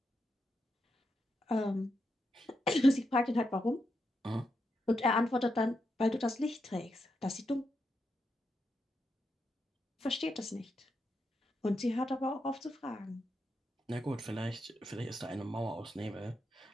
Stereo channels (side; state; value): both; normal; correlation 0.84